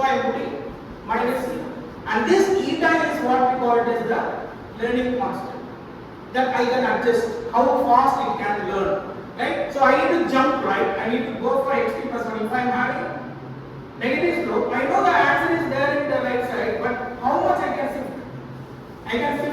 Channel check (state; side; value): identical; both; correlation 1.00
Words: I am putting minus here. And this eta is what we call it as the learning constant, that I can adjust how fast it can learn, right? So I need to jump right, I need to go for xt plus 1. If I am having negative slope, I know the answer is there in the right side, but how much I can shift? I can